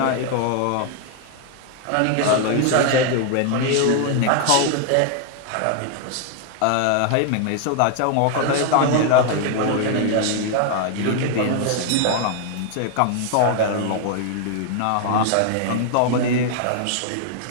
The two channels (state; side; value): different; both; correlation 0.00